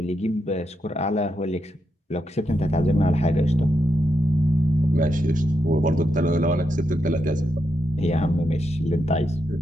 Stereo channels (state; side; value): normal; both; correlation 0.83